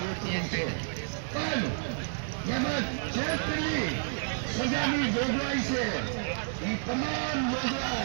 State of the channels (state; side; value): silent; left; 58 dB below the other